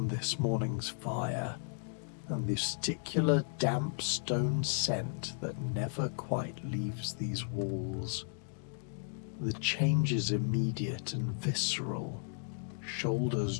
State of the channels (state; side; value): silent; right; digital silence